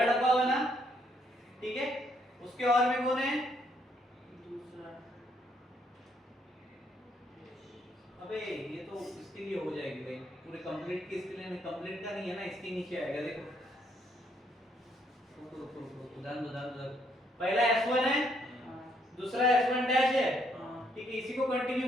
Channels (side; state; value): both; normal; correlation 0.71